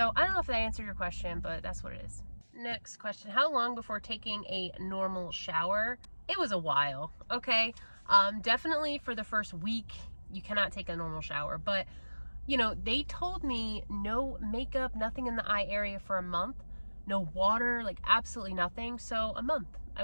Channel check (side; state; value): both; inverted; correlation -1.00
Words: I don't know if that answered your question, but that's what it is. Next question, how long before taking a normal shower? It was a while, okay? Definitely for the first week, you cannot take a normal shower, but you know, they told me no makeup, nothing in the eye area for a month, no water, like absolutely nothing. So a month,